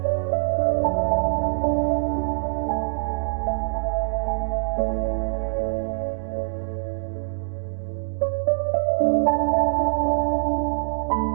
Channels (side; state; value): left; silent; digital silence